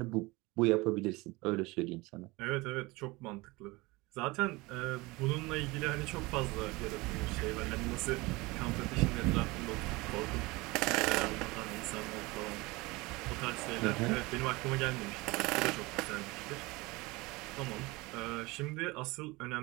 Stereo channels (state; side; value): quieter; left; 23.0 dB